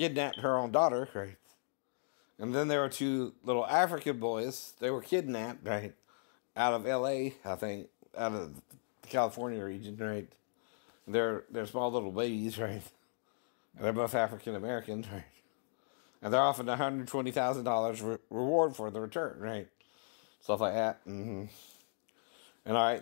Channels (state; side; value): silent; right; digital silence